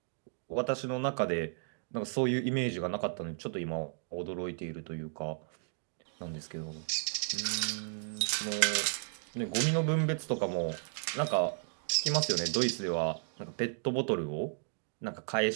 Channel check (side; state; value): left; silent; digital silence